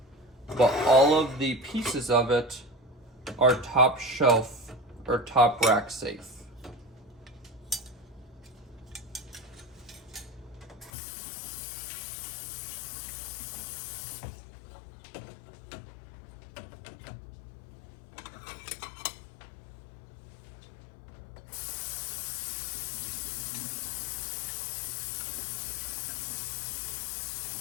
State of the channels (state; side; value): drops out; right; at 10.9 s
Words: but all of the pieces of it are top shelf or top rack safe.